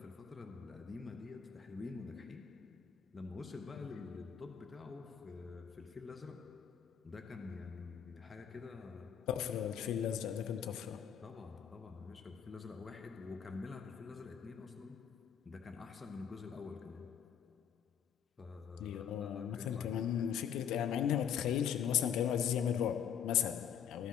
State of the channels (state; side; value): quieter; right; 8.3 dB